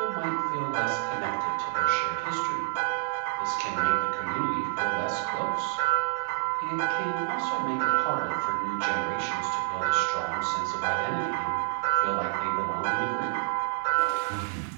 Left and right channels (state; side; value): silent; left; digital silence